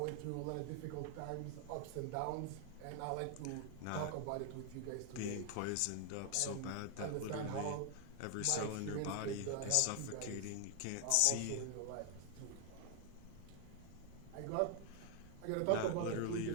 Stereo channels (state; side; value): different; both; correlation 0.00